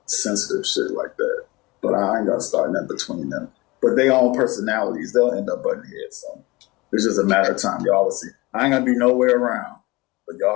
sensitive shit like that. But I ain't gonna start nothing between them. But they own personalities. They'll end up butting heads. So it's just a matter of time. Y'all will see. I ain't gonna be nowhere around, but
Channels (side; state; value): right; quieter; 22.5 dB